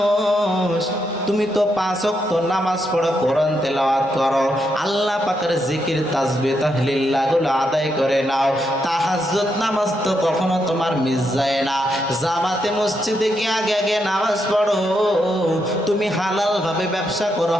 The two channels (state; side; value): normal; both; correlation 0.80